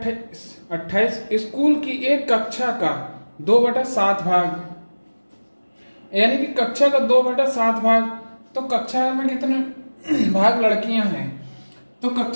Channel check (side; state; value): both; inverted; correlation -1.00